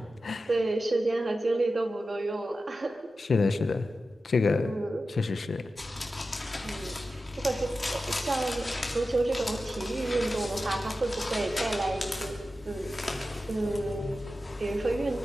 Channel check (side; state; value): both; normal; correlation 0.93